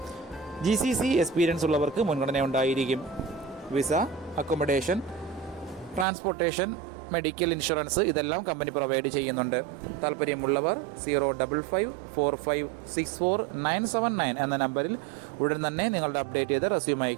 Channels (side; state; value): left; drops out; at 6.1 s